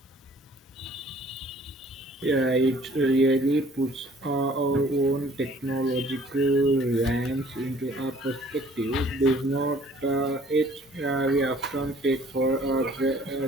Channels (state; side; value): normal; both; correlation 0.55